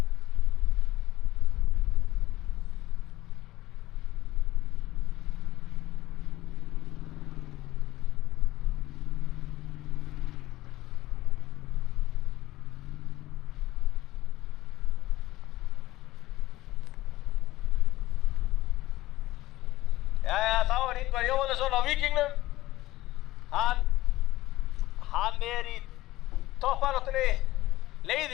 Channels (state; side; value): quieter; right; 16.6 dB